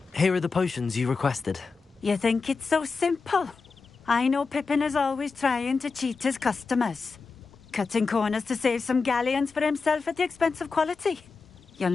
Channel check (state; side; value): quieter; right; 4.6 dB